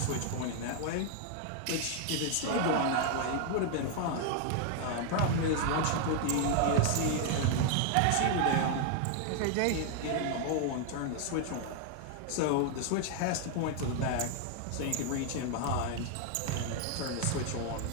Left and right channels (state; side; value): different; both; correlation 0.00